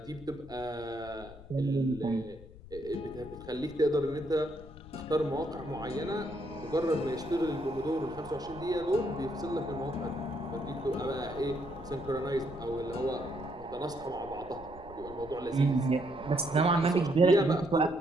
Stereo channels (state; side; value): noise; left; rumble, 17 dB below the sound